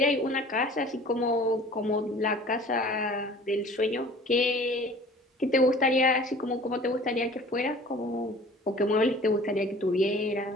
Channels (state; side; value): normal; both; correlation 0.47